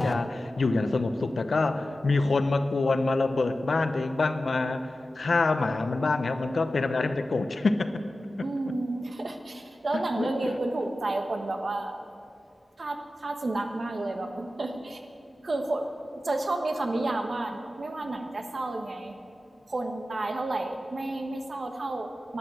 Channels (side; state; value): both; normal; correlation 0.94